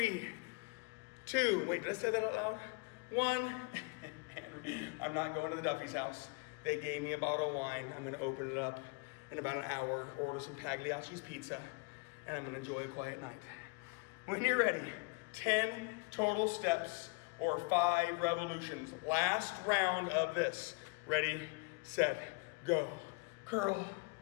2. Wait, did I say that out loud? 1. I'm not going to the Duffy's house. They gave me a bottle of wine. I'm going to open it up in about an hour, order some Pagliacci's pizza, and I'm going to enjoy a quiet night. When you're ready, 10 total steps or 5 revolutions. Last round of this. Ready, set, go. Curl,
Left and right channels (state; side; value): quieter; right; 31.1 dB